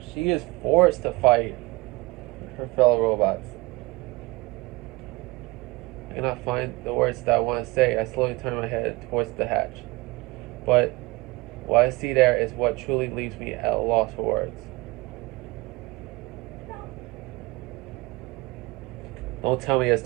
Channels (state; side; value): quieter; left; 23.2 dB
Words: is forced to fight her fellow robots. I cannot find the words that I want to say. I slowly turn my head towards the hatch. But what I see there is what truly leaves me at a loss for words. Don't tell me